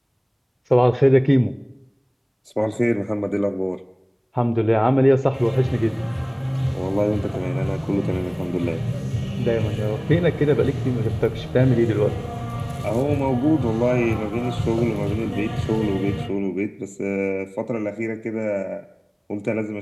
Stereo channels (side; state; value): both; identical; correlation 1.00